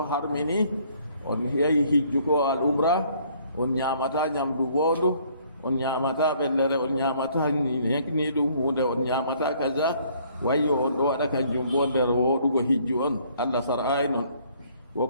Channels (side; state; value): both; inverted; correlation -0.62